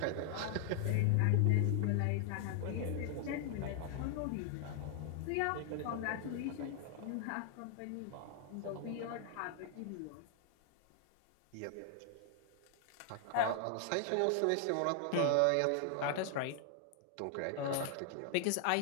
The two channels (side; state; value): both; different; correlation 0.00